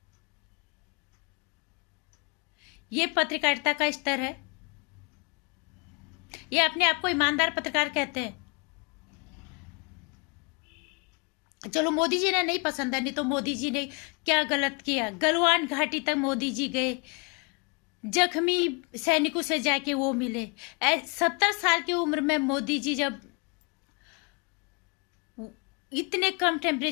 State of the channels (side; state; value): right; quieter; 32.2 dB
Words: ये पत्रकारिता का स्तर है? ये अपने आप को ईमानदार पत्रकार कहते हैं? चलो मोदी जी ने नहीं पसंद है, नहीं तो मोदी जी ने क्या गलत किया? गलवान घाटी तक मोदी जी गए, जख्मी सैनिकों से जाके वो मिले। 70 साल की उम्र में मोदी जी जब इतने कम